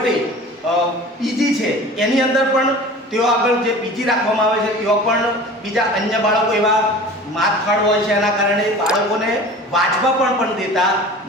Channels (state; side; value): normal; both; correlation 0.40